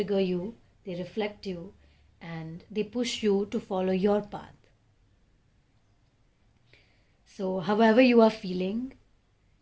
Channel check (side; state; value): both; identical; correlation 1.00